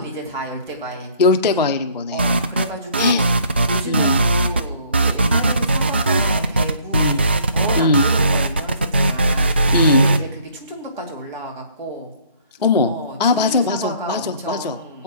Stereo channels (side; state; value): both; inverted; correlation -0.58